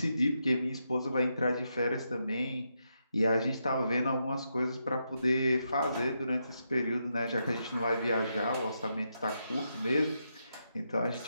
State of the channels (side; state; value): both; inverted; correlation -0.83